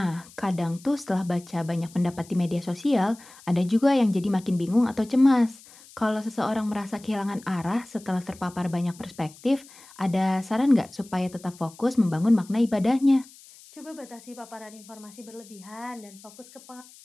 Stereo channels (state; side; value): noise; left; hiss, 22 dB below the sound